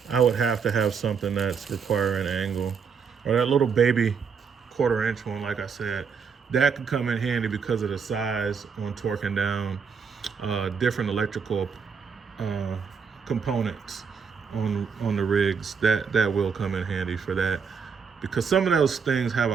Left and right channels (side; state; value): left; quieter; 6.1 dB